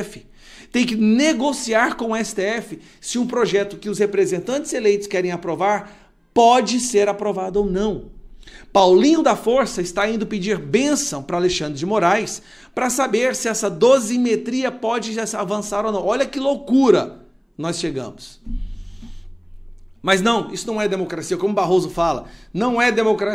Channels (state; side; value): identical; both; correlation 1.00